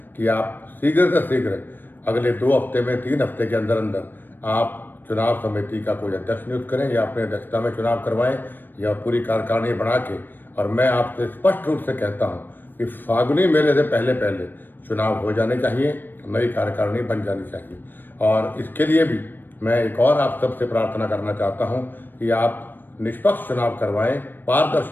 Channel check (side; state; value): right; late; 0.093 ms